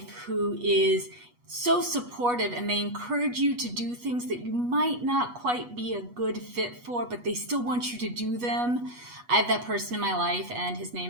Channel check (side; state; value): left; late; 8.2 ms